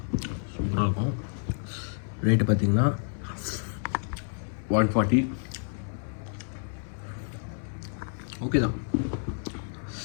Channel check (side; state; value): right; silent; 58 dB below the other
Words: சூப்பராக இருக்கும். ரேட்டு பார்த்தீங்கன்னா 140. ஓகே தான்.